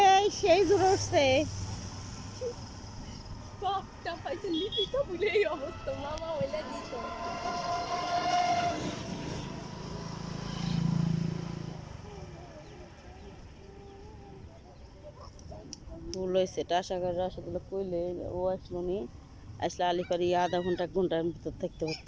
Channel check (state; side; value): identical; both; correlation 1.00